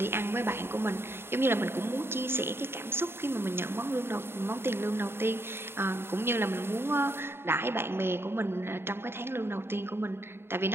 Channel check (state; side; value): late; left; 0.11 ms